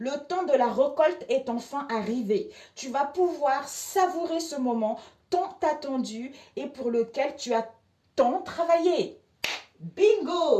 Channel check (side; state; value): both; identical; correlation 1.00